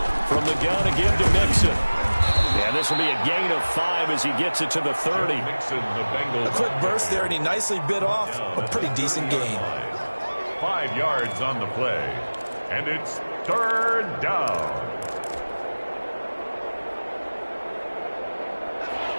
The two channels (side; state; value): both; inverted; correlation -1.00